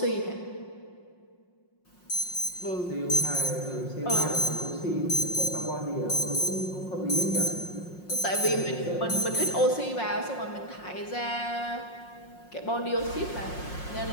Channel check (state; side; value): late; right; 5.6 ms